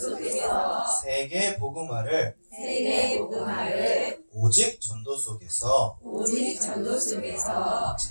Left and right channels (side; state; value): both; inverted; correlation -1.00